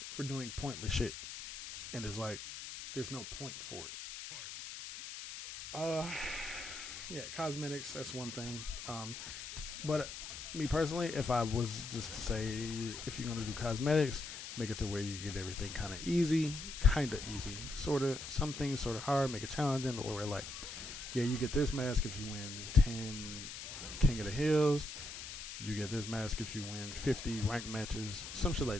for doing pointless shit, and it's like there's no point for it. Yeah, cosmetics, that's one thing. But me personally, if I was just to say, if you're gonna do cosmetics, make it to where you get everything kind of easy, sort of. Some things sort of hard, make it challenging. Where like, yeah, you get this mask if you win 10 King of the Hills. You get this mask if you win 50 ranked matches, some shit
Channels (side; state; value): left; noise; hiss, 9 dB below the sound